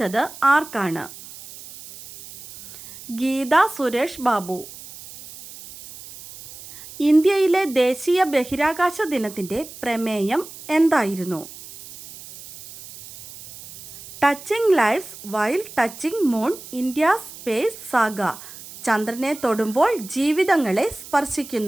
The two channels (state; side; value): noise; right; hiss, 16 dB below the sound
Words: ആർക്കാണ്? ഗീത സുരേഷ് ബാബു. ഇന്ത്യയിലെ ദേശീയ ബഹിരാകാശ ദിനത്തിൻ്റെ പ്രമേയം എന്തായിരുന്നു? Touching lives while touching moon, India space saga. ചന്ദ്രനെ തൊടുമ്പോൾ ജീവിതങ്ങളെ